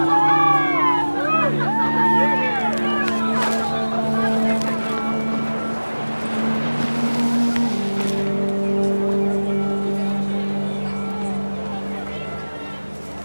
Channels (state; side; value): inverted; both; correlation -1.00